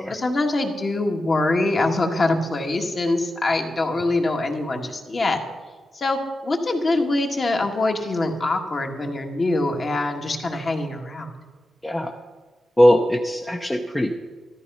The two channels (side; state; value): both; normal; correlation 0.92